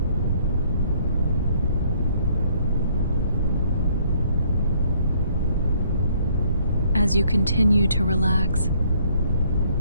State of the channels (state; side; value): inverted; both; correlation -0.64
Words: As you continue to relax,